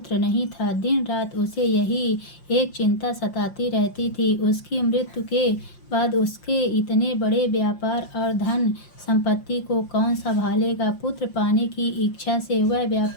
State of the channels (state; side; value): late; right; 5.7 ms